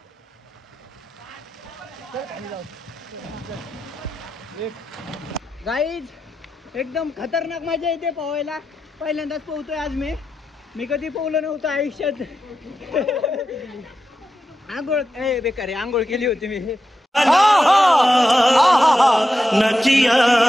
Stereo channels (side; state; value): both; normal; correlation 0.89